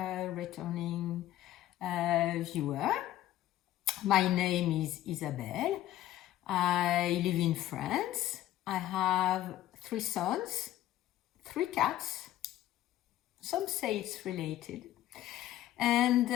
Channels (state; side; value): quieter; right; 13.8 dB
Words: returning viewer. My name is Isabelle. I live in France. I have 3 sons, 3 cats. Some say it's related. And